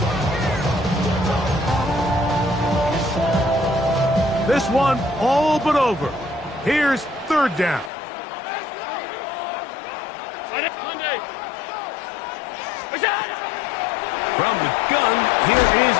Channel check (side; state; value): right; drops out; at 7.9 s